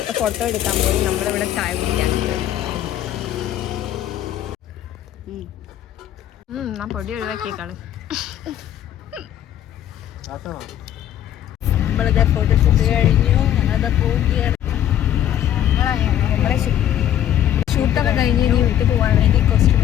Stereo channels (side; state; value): right; quieter; 11.3 dB